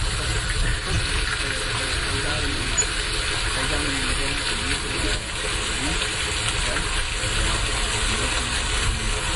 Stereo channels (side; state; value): both; identical; correlation 1.00